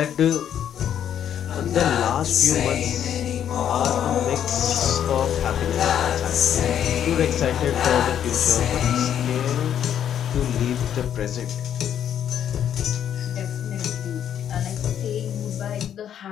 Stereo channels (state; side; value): quieter; right; 9.6 dB